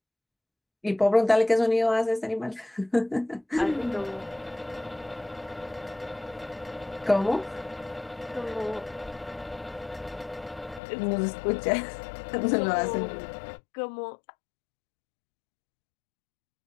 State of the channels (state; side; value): drops out; right; at 10.8 s